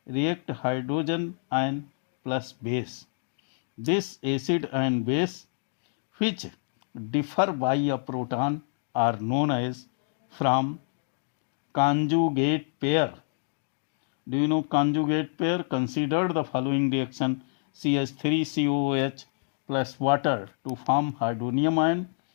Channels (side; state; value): right; silent; digital silence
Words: react hydrogen ion plus base. This acid and base, which differ by a proton, are known as from conjugate pair. Do you know conjugate pair? Consider the following reaction: CH3COOH plus water to form hydronium ion